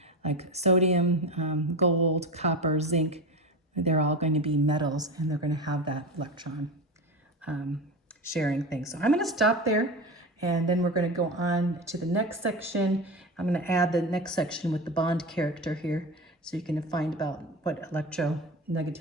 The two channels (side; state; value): both; normal; correlation 0.25